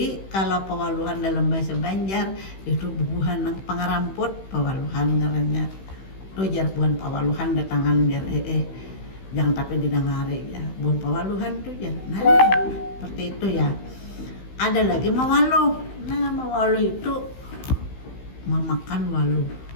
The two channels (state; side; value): late; right; 16 ms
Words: kalau pewaluhan dalam bahasa Banjar itu bubuhan yang pengaramput, pewaluhan ngarannya. Tuh jar buhan pewaluhan datangan jar jangan tapi didangari ya, buhan pewaluhan tuh jar. Nah, seperti itu ya. Ada lagi mawaluh. Nah, mawaluh itu memakan waluh.